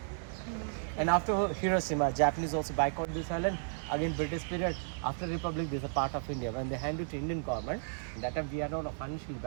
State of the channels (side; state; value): left; silent; digital silence